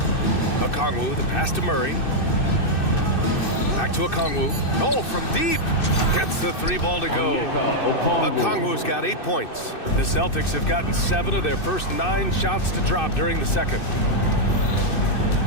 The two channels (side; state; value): right; late; 2.6 ms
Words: Kongwu, the pass to Murray. Back to Kongwu. Oh, from deep. Gets the 3 ball to go. Kongwu's got 8 points. The Celtics have gotten 7 of their first 9 shots to drop during the second.